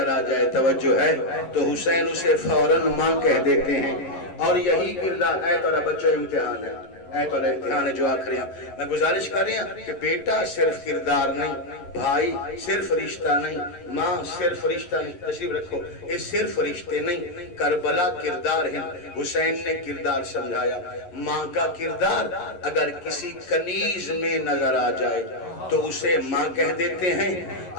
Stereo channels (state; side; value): late; right; 11 ms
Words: آ جائے، توجہ ہے، تو حسین اسے فوراً ماں کہہ دیتے ہیں۔ اور یہی کردار ہے تو بچوں امتحان ہے، تو امتحان ہے جو آخری ہیں۔ میں گزارش کر رہی ہوں کہ بیٹا صرف کردار نہیں، بھائی صرف رشتہ نہیں، ماں صرف رشتہ نہیں، تشریف رکھو، یہ صرف رشتے نہیں، کربلا کردار ہیں۔ حسین نے کردار سمجھایا، ماں کا کردار اگر کسی کنیز میں نظر آ جائے تو اسے ماں کہہ دیتے ہیں۔